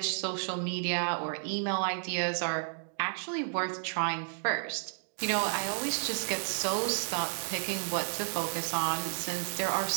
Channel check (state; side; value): silent; left; digital silence